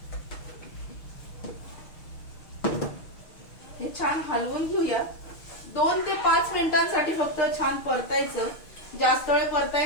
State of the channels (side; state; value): right; late; 6.2 ms